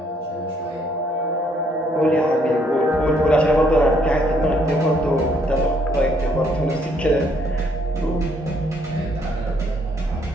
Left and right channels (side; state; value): both; normal; correlation 0.68